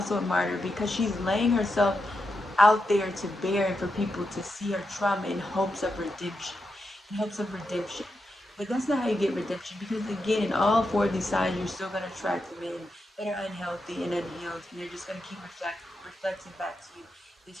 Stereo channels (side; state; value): both; normal; correlation 0.86